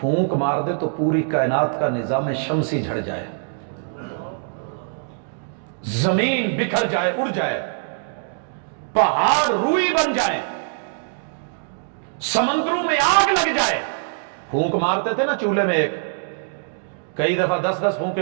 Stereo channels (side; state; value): left; silent; digital silence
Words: مار دے تو پوری کائنات کا نظام شمسی جھڑ جائے، زمین بکھر جائے، اڑ جائے، پہاڑ روئی بن جائے، سمندروں میں آگ لگ جائے۔ پھونک مارتے تھے نا چولہے میں، ایک کئی دفعہ 10 پھونکے